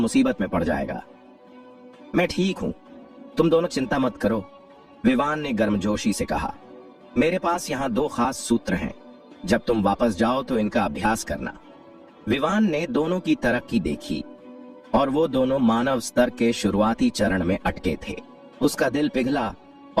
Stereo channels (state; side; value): identical; both; correlation 1.00